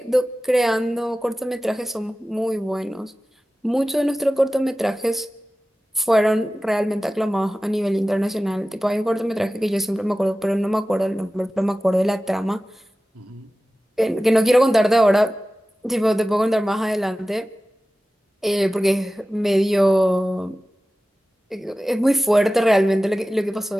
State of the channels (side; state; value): both; normal; correlation 0.96